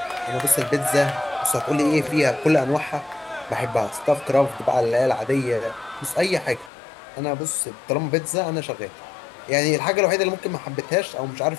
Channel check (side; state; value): right; drops out; at 6.7 s